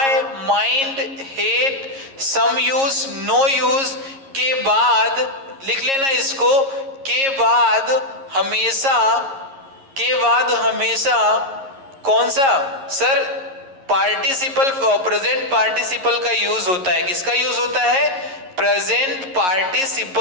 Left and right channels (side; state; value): left; late; 11 ms